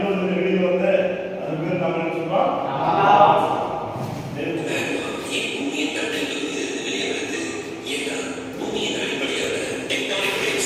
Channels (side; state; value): both; identical; correlation 1.00